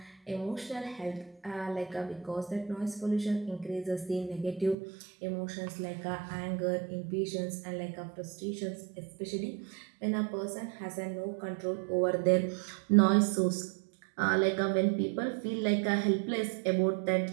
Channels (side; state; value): left; drops out; at 4.8 s